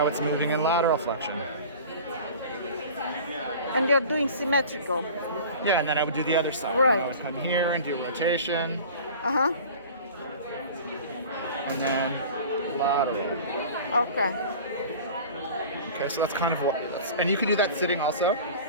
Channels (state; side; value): inverted; both; correlation -0.40